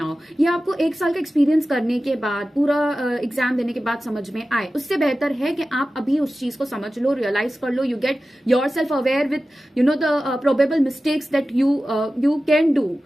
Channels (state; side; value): normal; both; correlation 0.95